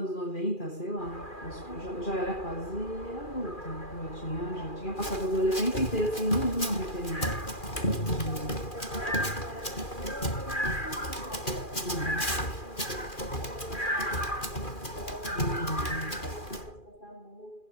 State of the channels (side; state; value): right; late; 2.4 ms